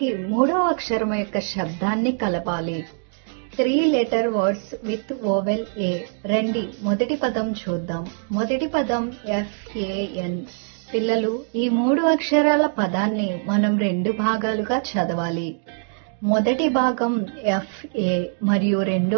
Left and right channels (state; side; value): silent; left; digital silence